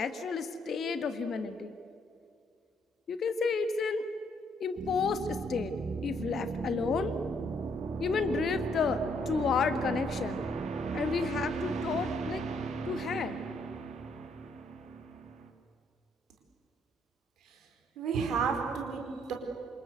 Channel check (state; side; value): normal; both; correlation 0.70